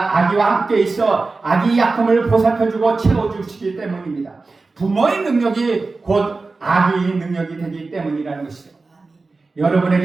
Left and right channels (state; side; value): quieter; left; 3.8 dB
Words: 아기와 함께 있어 아기 약함을 보살펴주고 채워주시기 때문입니다. 부모의 능력이 곧 아기의 능력이 되기 때문이라는 것이죠.